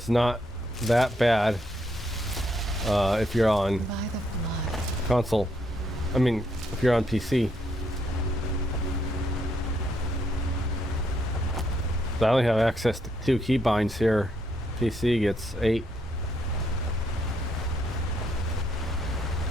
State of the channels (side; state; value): both; normal; correlation 0.74